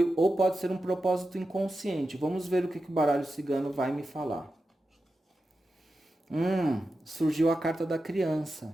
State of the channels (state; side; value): normal; both; correlation 0.91